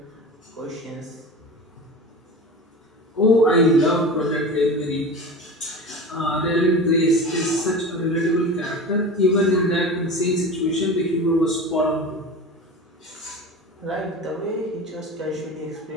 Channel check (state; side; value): normal; both; correlation 0.32